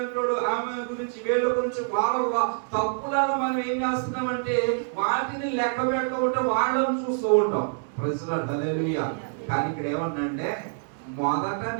ఆమె గురించి వీళ్ళ గురించి వాళ్ళ తప్పులను మనం ఏం చేస్తున్నామంటే వాటిని లెక్క పెడుతూ ఉంటాం, వాళ్ళని చూస్తూ ఉంటాం. ప్రెసిడెంట్ హల్లెలూయా. కానీ ఇక్కడ ఏమన్నంటే మొదట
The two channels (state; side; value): silent; left; digital silence